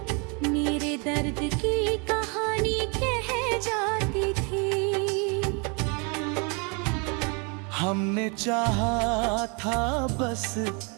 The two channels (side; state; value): left; quieter; 33.2 dB